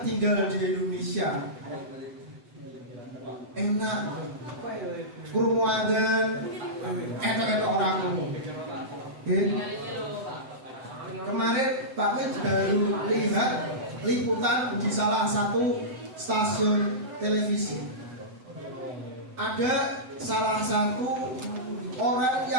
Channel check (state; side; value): late; left; 7.9 ms